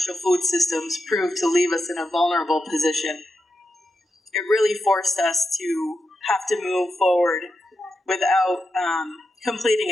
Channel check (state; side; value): normal; both; correlation 0.87